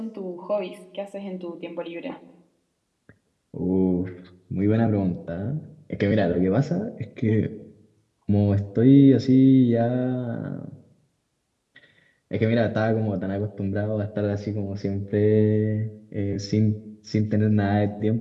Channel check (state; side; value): identical; both; correlation 1.00